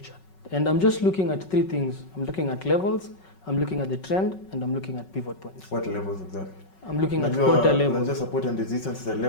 chart. And I'm just looking at 3 things. I'm looking at levels, I'm looking at the trend, and I'm looking at pivot points. What levels exactly? I'm looking at quarter levels. Just support and resistance is a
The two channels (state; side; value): late; right; 5.4 ms